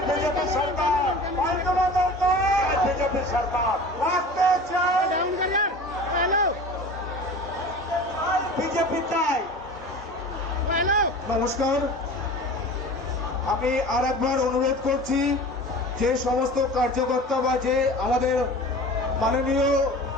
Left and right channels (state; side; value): normal; both; correlation 0.38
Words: बीजेपी सरकार पाल्टना दरकार बीजेपी सरकार रास्ते चाय बीजेपी चाय। নমস্কার, আমি আর একবার অনুরোধ করছি যে সমস্ত কার্যকর্তা বা যে আমাদের মাননীয়